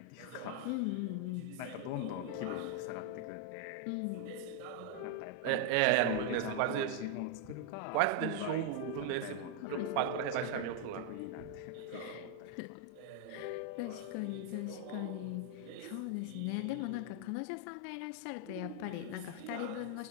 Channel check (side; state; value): both; different; correlation 0.00